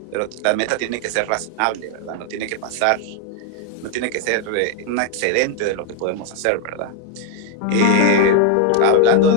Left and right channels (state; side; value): different; both; correlation 0.00